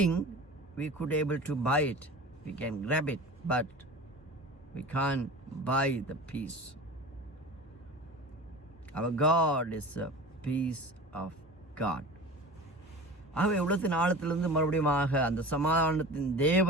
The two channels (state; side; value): normal; both; correlation 0.36